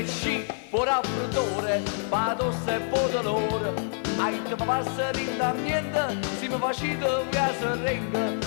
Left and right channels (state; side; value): silent; right; 56 dB below the other